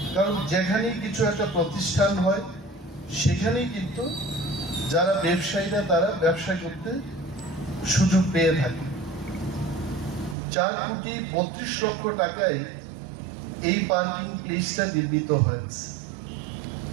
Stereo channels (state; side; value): drops out; left; at 10.4 s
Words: কারণ যেখানেই কিছু একটা প্রতিষ্ঠান হয় সেখানেই কিন্তু যারা ব্যবসায়ীরা তারা ব্যবসা করতে সুযোগ পেয়ে থাকে। 4,32,00,000 টাকায় এই পার্কিং প্লেসটা নির্মিত হয়েছে।